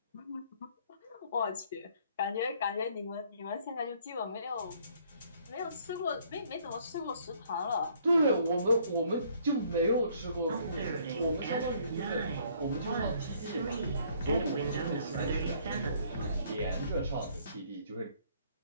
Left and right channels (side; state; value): both; inverted; correlation -0.62